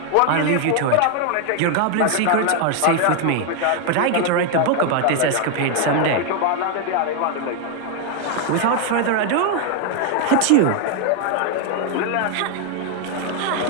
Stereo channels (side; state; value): both; different; correlation 0.01